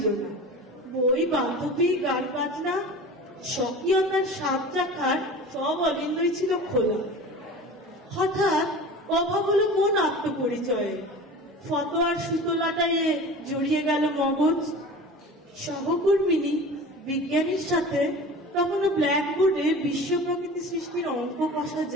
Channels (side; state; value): both; normal; correlation 0.37